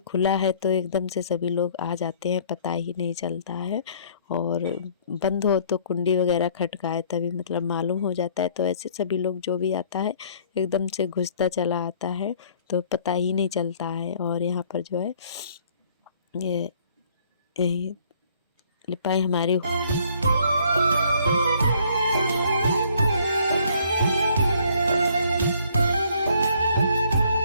है तो एकदम से सभी लोग आ जाते हैं, पता ही नहीं चलता है, और बंद हो तो कुंडी वगैरह खटकाए तभी मतलब मालूम हो जाता है, तो ऐसे सभी लोग जो भी आता है एकदम से घुसता चला आता है तो पता ही नहीं चलता है। और यहाँ पर जो है ये लिपाई हमारी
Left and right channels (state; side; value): inverted; both; correlation -0.60